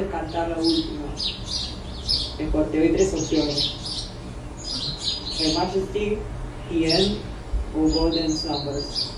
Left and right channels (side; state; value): both; identical; correlation 1.00